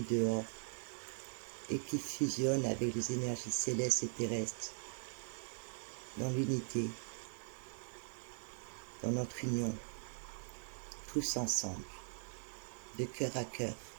dehors, et qui fusionne avec les énergies célestes et terrestres, dans l'unité, dans notre union, tous ensemble, de cœur à cœur,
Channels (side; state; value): left; silent; digital silence